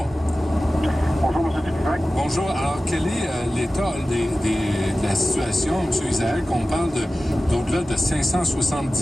Bonjour, M. Dupuis. Bonjour. Alors, quel est l'état de la situation, M. Isaac? On parle d'au-delà de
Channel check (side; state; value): both; normal; correlation 0.95